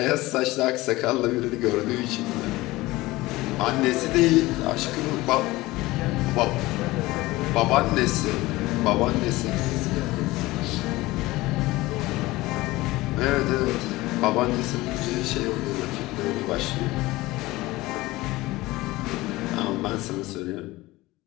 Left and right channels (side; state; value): right; quieter; 19.5 dB